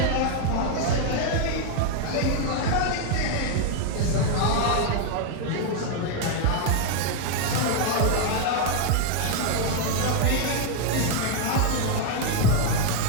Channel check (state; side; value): different; both; correlation 0.00